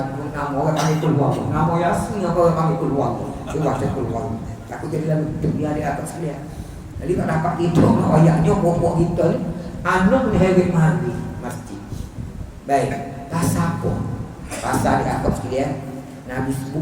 orang panggil keluar Allah. Nama Yasin orang panggil keluar Allah. Dia baca keluar. Aku jadi lalu dia atas sekalian. Jadi tak dapat tidur ayahnya pokok kita ni anak ni hebat mandi masjid. Baik, pasal apa? Pasal di atas sekalian Nabi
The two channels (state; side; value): identical; both; correlation 1.00